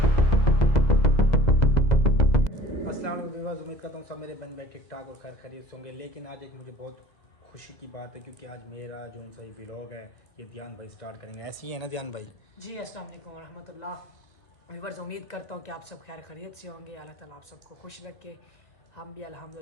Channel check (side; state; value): right; late; 2.0 ms